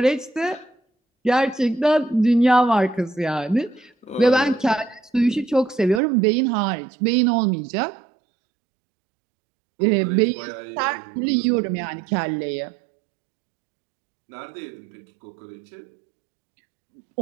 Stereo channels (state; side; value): drops out; left; at 6.0 s